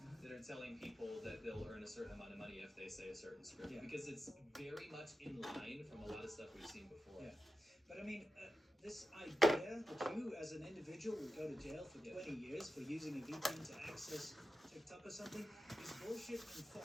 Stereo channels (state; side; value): normal; both; correlation 0.91